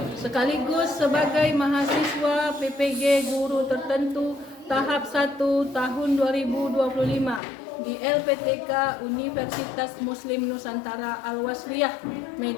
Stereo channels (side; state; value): right; drops out; at 7.4 s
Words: Sekaligus sebagai mahasiswa PPG guru tertentu tahap 1 tahun 2025 di LPTK Universitas Muslim Nusantara Al-Wasliyah